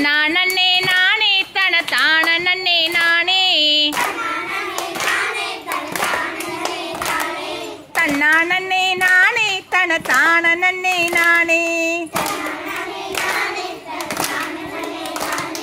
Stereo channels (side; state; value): both; identical; correlation 1.00